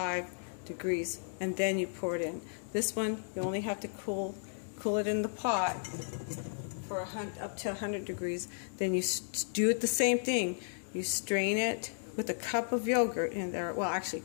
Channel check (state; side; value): silent; right; 55 dB below the other